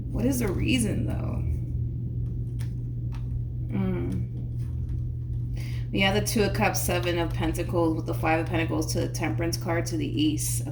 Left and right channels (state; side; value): identical; both; correlation 1.00